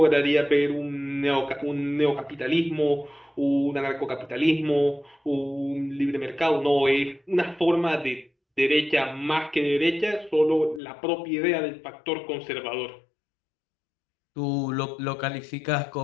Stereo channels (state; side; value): drops out; right; at 10.8 s